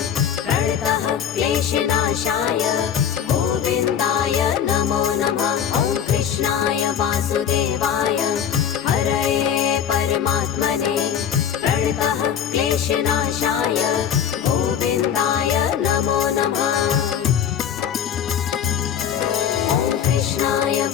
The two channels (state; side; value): quieter; right; 8.7 dB